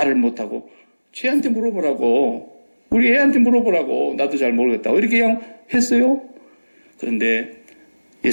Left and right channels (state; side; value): inverted; both; correlation -1.00